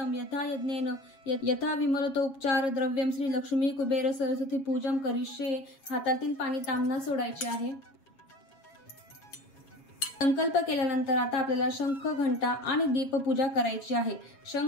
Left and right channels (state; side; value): late; right; 7.3 ms